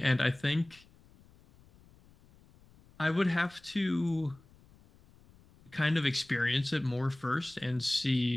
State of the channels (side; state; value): left; noise; rumble, 27 dB below the sound